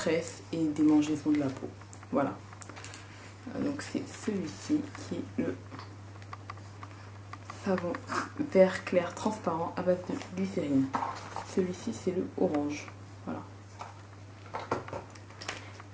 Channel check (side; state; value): both; identical; correlation 1.00